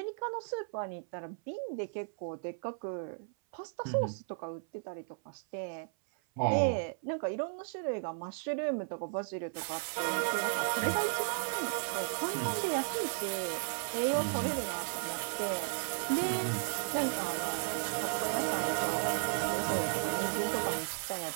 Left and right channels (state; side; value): silent; left; 55 dB below the other